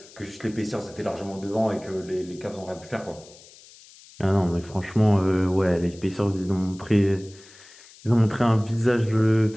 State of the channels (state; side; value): noise; left; hiss, 22 dB below the sound